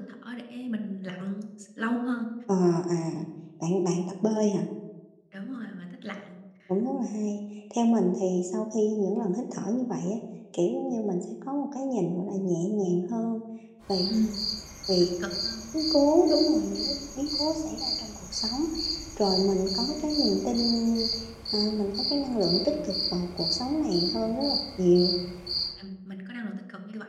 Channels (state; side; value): identical; both; correlation 1.00